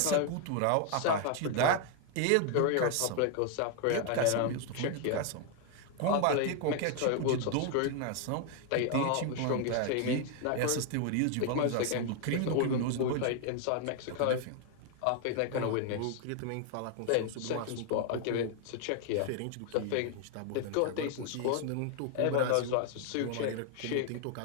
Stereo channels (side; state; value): both; different; correlation 0.00